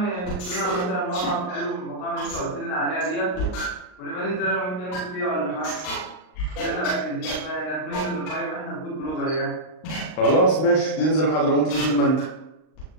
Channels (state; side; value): late; right; 39 ms